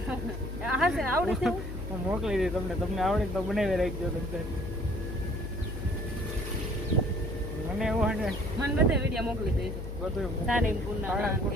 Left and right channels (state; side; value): noise; left; hum, 7 dB below the sound